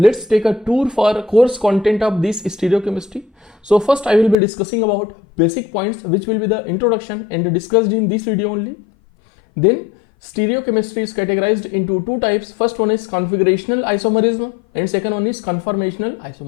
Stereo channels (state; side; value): drops out; right; at 4.4 s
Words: let's take a tour for course content of this stereochemistry. So first I will be discussing about basic points, which will be the introduction and discussed in this video only. Then stereochemistry is categorized into two types. First one is configurational isomerism and second one is conformational